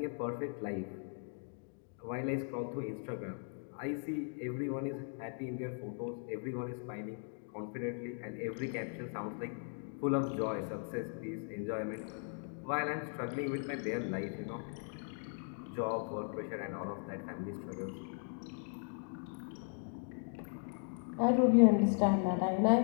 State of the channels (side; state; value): right; silent; 52 dB below the other